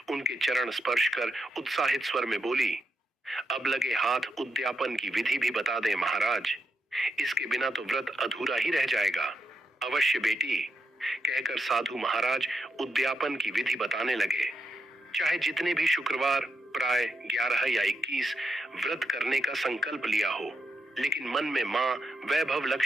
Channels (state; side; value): normal; both; correlation 0.83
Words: उनके चरण स्पर्श कर उत्साहित स्वर में बोली, अब लगे हाथ उद्यापन की विधि भी बता दें महाराज। इसके बिना तो व्रत अधूरा ही रह जाएगा। अवश्य बेटी, कहकर साधु महाराज उद्यापन की विधि बताने लगे। चाहे जितने भी शुक्रवार प्राय 11 या 21 व्रत करने का संकल्प लिया हो, लेकिन मन में माँ वैभव